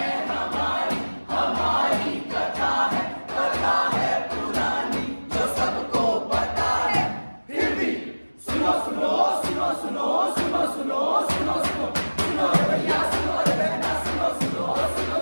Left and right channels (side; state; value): both; inverted; correlation -1.00